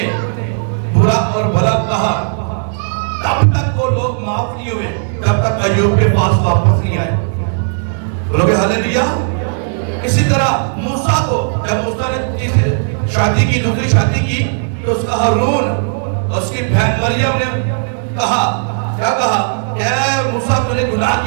برا اور بھلا کہا، تب تک وہ لوگ معاف نہیں ہوئے جب تک ایوب کے پاس واپس نہیں آئے، بولو گے ہاللیلویا۔ اسی طرح موسیٰ کو جب موسیٰ نے شادی کی، دوسری شادی کی، تو اس کا ہارون اور اس کی بہن مریم نے کہا، کیا کہا کہ اے موسیٰ تو نے گناہ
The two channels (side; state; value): left; silent; digital silence